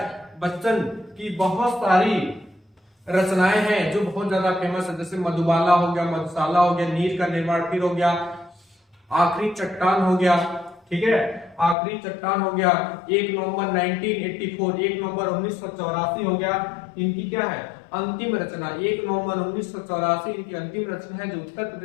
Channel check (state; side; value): drops out; right; at 11.8 s